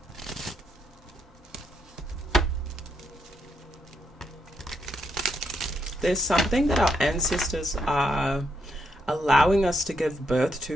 There's something that our ancestors are allowing us to give birth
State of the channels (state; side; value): normal; both; correlation 0.78